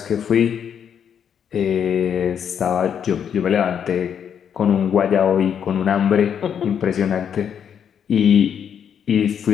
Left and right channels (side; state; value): right; quieter; 8.2 dB